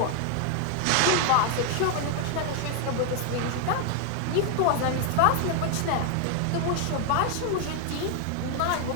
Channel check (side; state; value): both; different; correlation 0.01